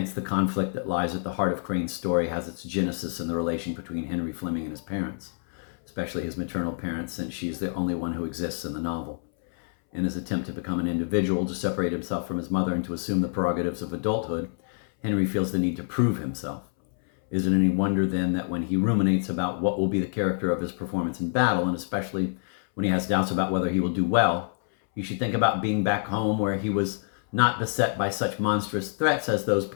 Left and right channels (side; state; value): right; silent; 60 dB below the other